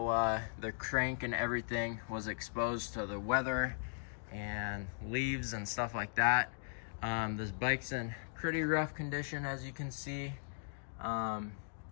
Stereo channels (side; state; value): right; silent; digital silence